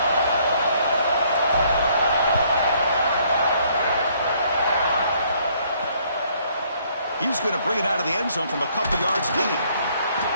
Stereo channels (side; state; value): both; inverted; correlation -0.65